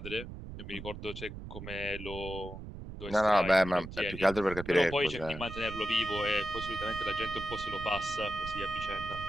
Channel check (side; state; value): right; noise; rumble, 10 dB below the sound